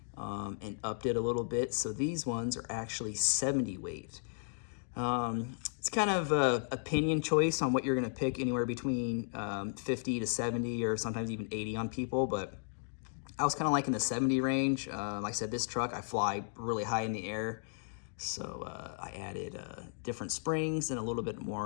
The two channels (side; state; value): right; silent; digital silence